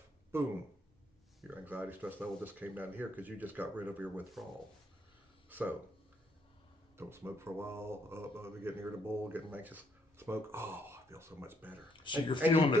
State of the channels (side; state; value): both; normal; correlation 0.72